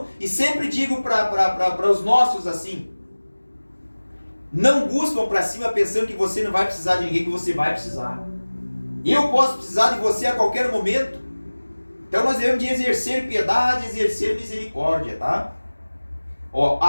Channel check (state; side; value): inverted; both; correlation -1.00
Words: e sempre digo para os nossos assim: não buscam para cima pensando que você não vai precisar de ninguém, que você vai precisar. Eu posso precisar de você a qualquer momento. Então nós devemos de exercer piedade, exercer misericórdia, tá? Ó,